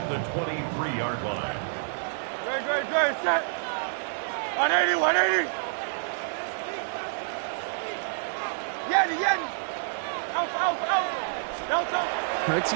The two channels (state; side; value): silent; left; digital silence